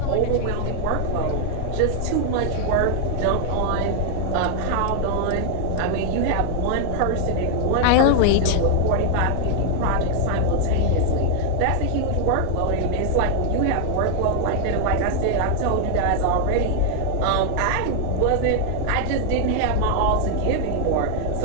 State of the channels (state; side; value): different; both; correlation 0.00